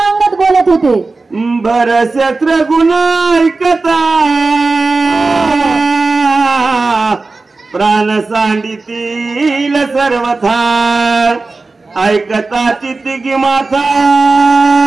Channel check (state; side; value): quieter; left; 3.7 dB